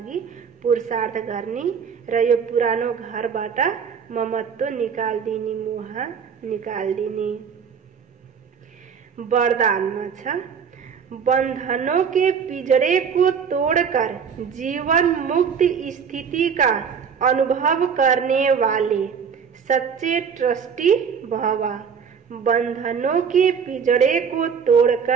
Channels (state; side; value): quieter; left; 6.7 dB